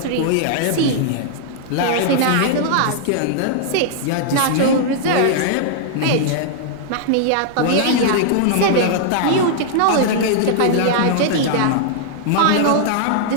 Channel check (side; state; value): both; different; correlation -0.01